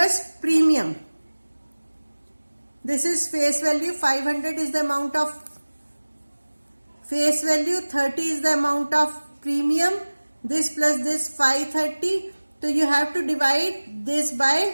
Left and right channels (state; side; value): inverted; both; correlation -1.00